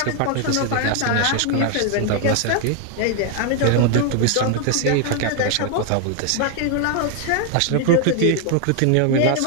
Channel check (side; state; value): both; different; correlation 0.00